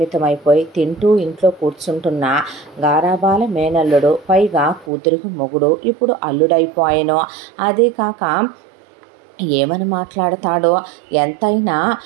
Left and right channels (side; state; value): left; drops out; at 4.9 s